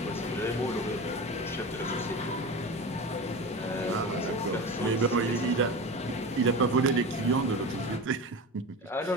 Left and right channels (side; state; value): both; normal; correlation 0.28